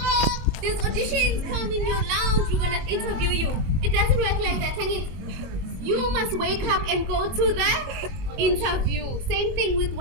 These auditions come in your lounge. We're gonna interview you. It doesn't work like that. You must wake up and go to the interview. Same thing with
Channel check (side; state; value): left; late; 22 ms